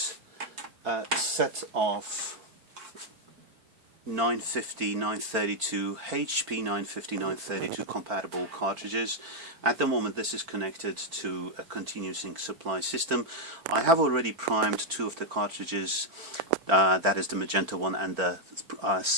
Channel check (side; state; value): left; late; 4.5 ms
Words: a set of 950, 932, HP 950, 932 compatible cartridges. At the moment this is connected to a continuous ink supply system. I have already primed two of the cartridges, that is the magenta one and the